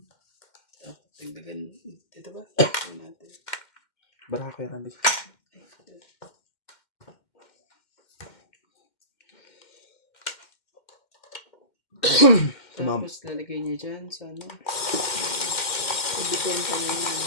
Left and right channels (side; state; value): right; late; 2.1 ms